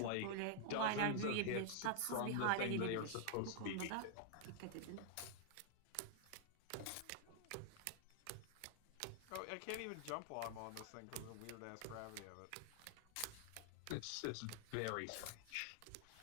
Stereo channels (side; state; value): both; different; correlation 0.00